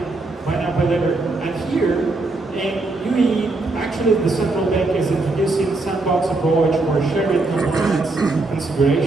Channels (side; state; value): left; quieter; 3.2 dB